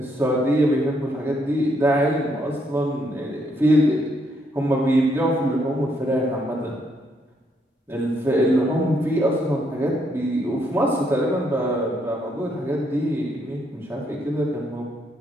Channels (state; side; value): normal; both; correlation 0.74